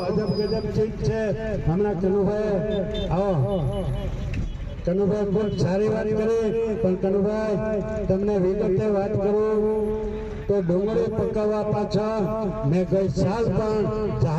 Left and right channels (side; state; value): both; identical; correlation 1.00